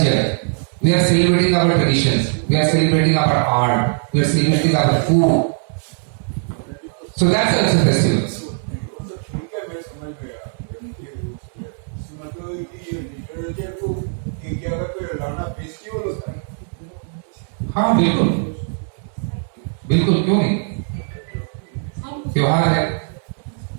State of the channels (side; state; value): left; silent; 63 dB below the other